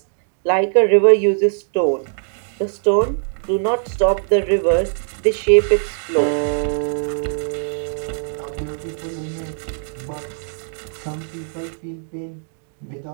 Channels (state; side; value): silent; left; digital silence